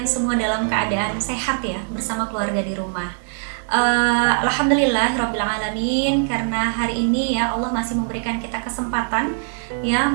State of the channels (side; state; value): left; silent; 65 dB below the other